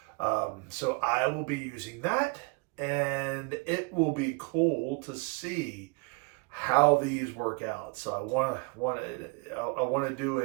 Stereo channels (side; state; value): left; quieter; 30.6 dB